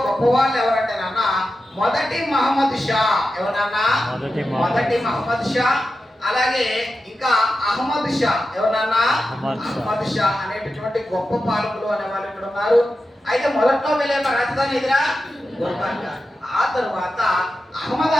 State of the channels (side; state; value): both; normal; correlation 0.91